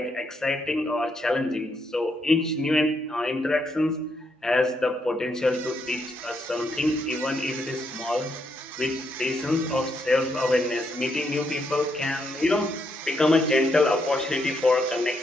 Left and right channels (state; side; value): normal; both; correlation 0.78